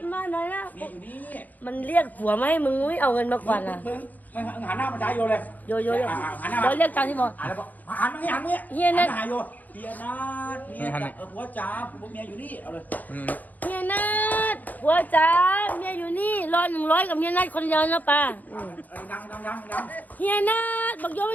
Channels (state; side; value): late; right; 0.081 ms